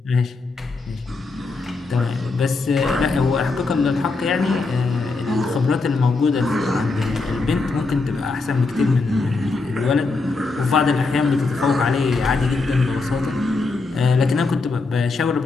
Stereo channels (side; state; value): right; quieter; 3.8 dB